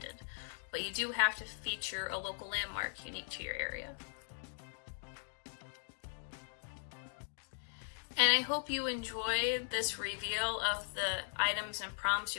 But you do have to feature a local landmark unique to your area. And I hope you enjoyed this reveal of the items and prompts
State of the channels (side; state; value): right; silent; digital silence